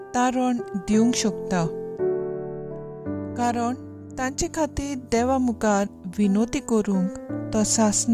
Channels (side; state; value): both; identical; correlation 1.00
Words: तारण दिवंक शकता, कारण तांचे खातीर देवा मुखार विनोती करूंक तो